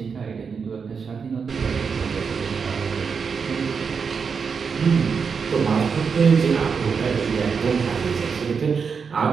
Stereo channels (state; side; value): quieter; left; 5.8 dB